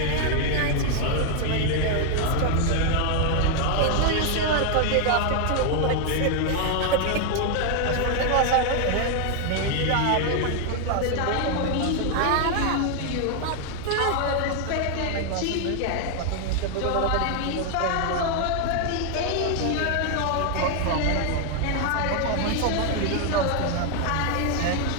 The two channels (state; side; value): different; both; correlation 0.00